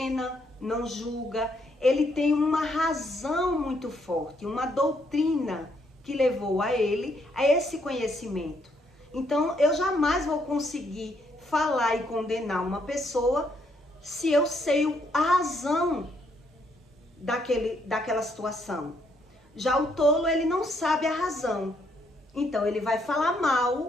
não julga. Ele tem uma razão muito forte, uma doutrina que levou a ele a esse conhecimento. Então, eu jamais vou conseguir falar e condenar uma pessoa se eu sei a razão daquela situação. Já o tolo, ele não sabe a razão. Então, ele vai falar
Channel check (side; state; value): both; normal; correlation 0.72